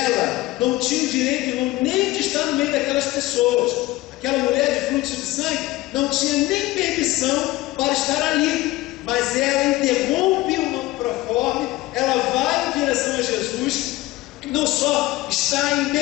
não tinha o direito, irmão, nem de estar no meio daquelas pessoas. Aquela mulher de fluxo de sangue não tinha nem permissão para estar ali, mas ela interrompe o proforme, ela vai em direção a Jesus, não só está em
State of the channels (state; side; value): quieter; right; 18.3 dB